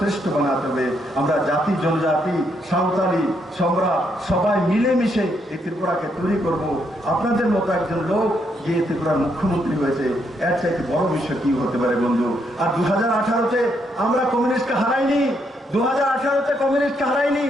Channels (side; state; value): both; normal; correlation 0.76